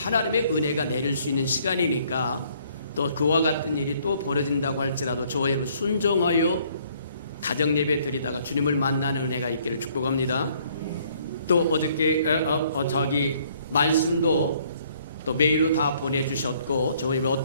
은혜가 내릴 수 있는 시간이니까 또 그와 같은 일이 또 벌어진다고 할지라도 저와 여러분 순종하여 가정예배 드리다가 주님을 만나는 은혜가 있기를 축복합니다. 또 어저께 말씀도 또 메일로 다 보내주셨고 저희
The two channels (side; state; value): both; inverted; correlation -0.63